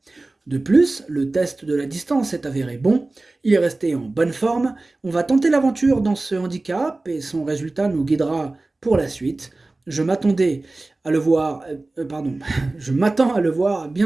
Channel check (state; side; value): quieter; left; 3.1 dB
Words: De plus, le test de la distance est avéré bon, il est resté en bonne forme, on va tenter l'aventure dans ce handicap et son résultat nous guidera pour la suite. Je m'attendais à le voir, je m'attends à le voir